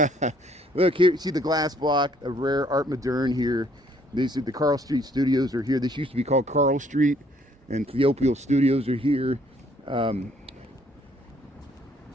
Look here, see the glass block of rare art moderne here. These are the Carl Street Studios are here. This used to be called Carl Street, and Theopial Studios are here.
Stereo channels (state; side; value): normal; both; correlation 0.64